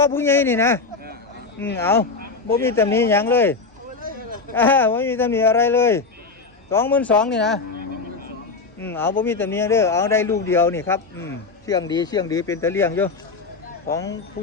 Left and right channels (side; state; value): right; quieter; 4.3 dB